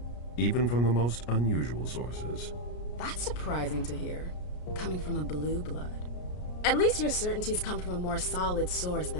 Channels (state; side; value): late; right; 33 ms